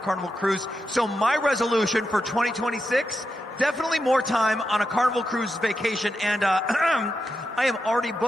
cruise. So my resolution for 2026, definitely more time on a Carnival cruise vacation. And I am already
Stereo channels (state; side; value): normal; both; correlation 0.88